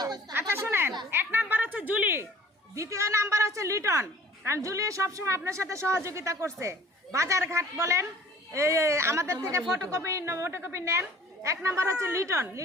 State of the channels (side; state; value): both; normal; correlation 0.51